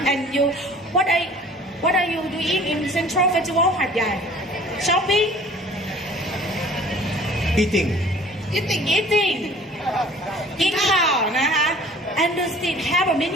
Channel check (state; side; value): normal; both; correlation 0.50